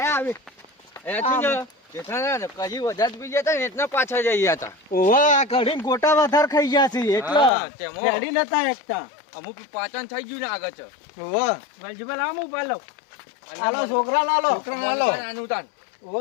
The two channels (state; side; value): drops out; right; at 7.5 s